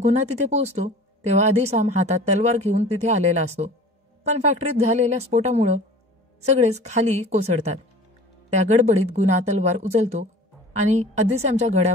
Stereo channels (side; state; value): both; normal; correlation 0.43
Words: गुणा तिथे पोहोचतो तेव्हा अधिसाम हातात तलवार घेऊन तिथे आलेला असतो, पण फॅक्टरीत झालेल्या स्फोटामुळं सगळेच खाली कोसळतात. त्या गडबडीत गुणा तलवार उचलतो आणि अधिश्यामच्या